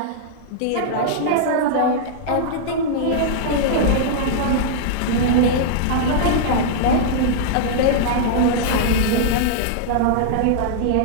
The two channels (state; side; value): different; both; correlation -0.02